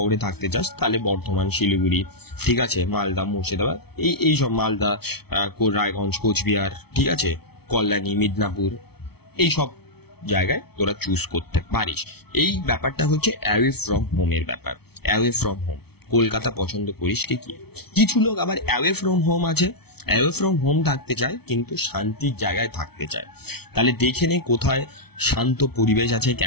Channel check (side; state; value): right; late; 0.97 ms